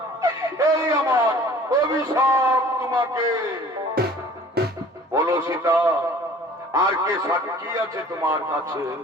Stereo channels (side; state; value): both; normal; correlation 0.49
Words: এই আমার অভিশাপ তোমাকে। বলো সীতা, আর কে সাক্ষী আছে তোমার কাছে?